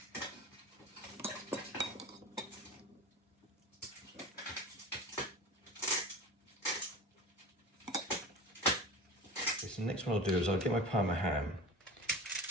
So the next one I'll do is I'll get my Parma ham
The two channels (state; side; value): normal; both; correlation 0.34